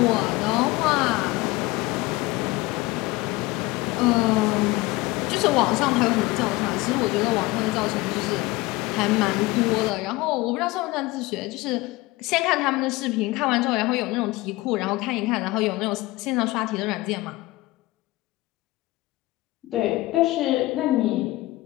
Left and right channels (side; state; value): right; quieter; 20.2 dB